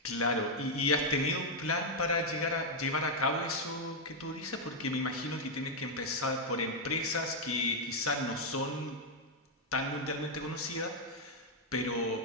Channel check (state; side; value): normal; both; correlation -0.01